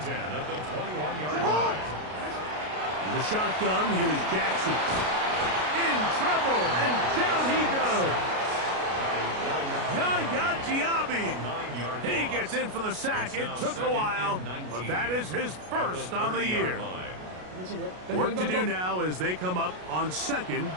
10 at the 21-yard line. In the shotgun, here's Jackson. In trouble, and down he goes. Yaya Diaby. He gets in for the sack. It took a while, but that is his first on the year. Work to do now as they come up on second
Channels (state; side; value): late; left; 33 ms